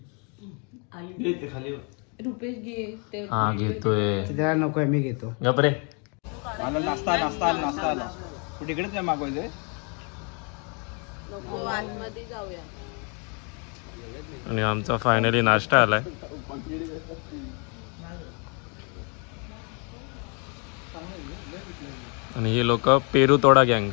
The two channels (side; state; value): right; quieter; 35.7 dB